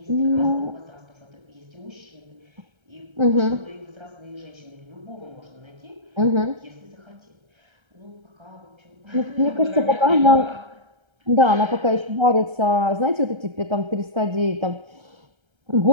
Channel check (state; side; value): late; left; 1.3 ms